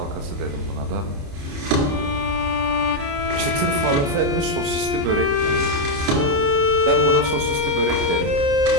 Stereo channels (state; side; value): late; left; 29 ms